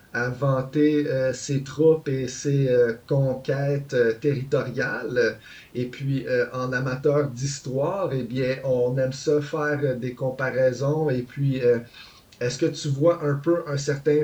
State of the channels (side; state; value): both; identical; correlation 1.00